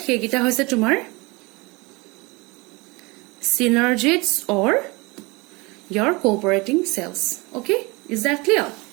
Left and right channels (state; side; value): quieter; left; 25.6 dB